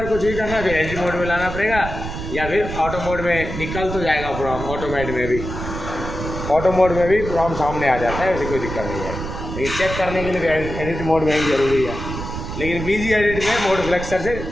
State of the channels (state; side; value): noise; right; rumble, 7 dB below the sound